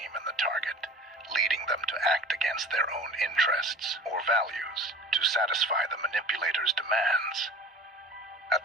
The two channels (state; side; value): normal; both; correlation 0.40